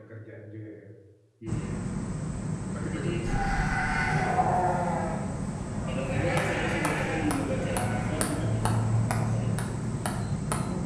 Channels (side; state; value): both; identical; correlation 1.00